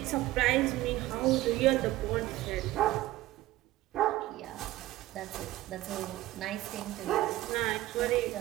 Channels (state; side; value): quieter; left; 16.4 dB